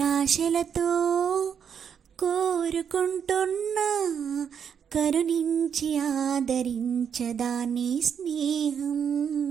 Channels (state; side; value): quieter; left; 7.7 dB